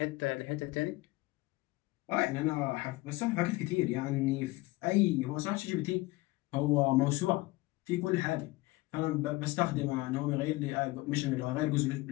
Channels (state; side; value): quieter; right; 20.8 dB